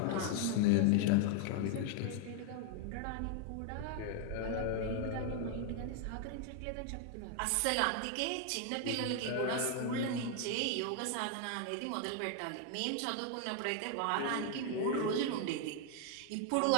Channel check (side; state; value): both; different; correlation 0.00